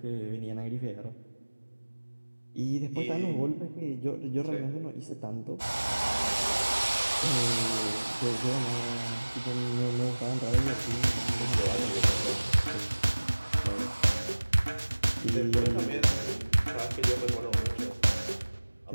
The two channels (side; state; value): both; inverted; correlation -1.00